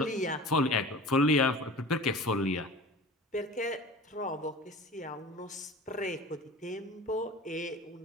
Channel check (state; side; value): normal; both; correlation 0.38